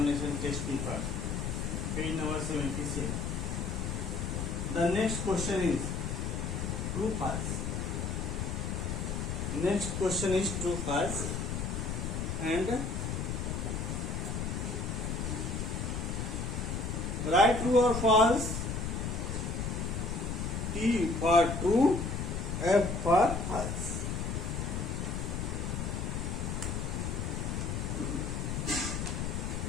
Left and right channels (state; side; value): noise; left; rumble, 2 dB below the sound